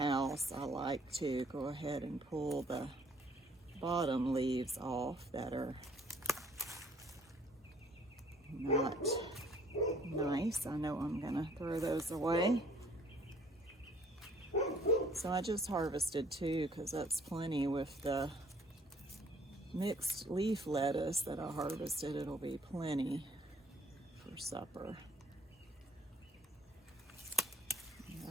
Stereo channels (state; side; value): normal; both; correlation 0.59